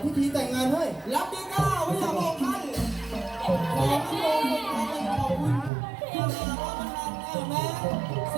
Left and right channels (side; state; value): left; drops out; at 5.7 s